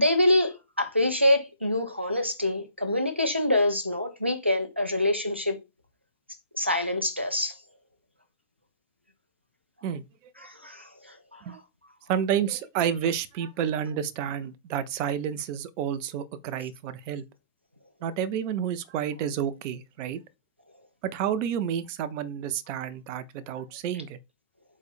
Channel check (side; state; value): both; inverted; correlation -0.50